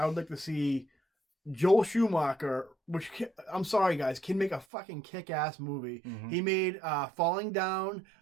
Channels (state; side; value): drops out; left; at 4.7 s